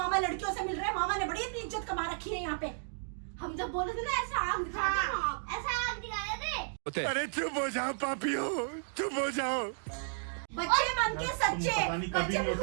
लड़कियों से मिल रहे हैं, मामा ने बड़ी इतनी इज्जत कमा रखी है यहाँ पे। हम जब बोले थे ना ऐसा आग दिखा दे, ऐसा आग दिखाया थे। अरे चुप हो जाओ पापियो, चुप हो जाओ। बच्चे मन के सच्चे, बच्चे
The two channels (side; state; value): left; silent; digital silence